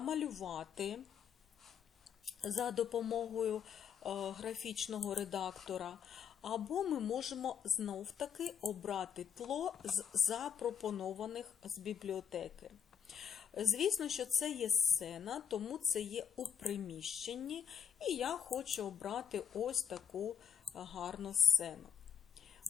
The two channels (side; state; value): right; quieter; 8.1 dB